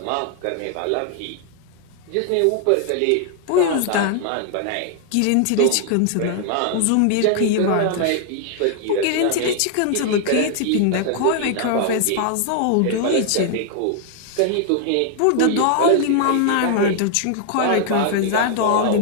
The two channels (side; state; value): both; different; correlation 0.00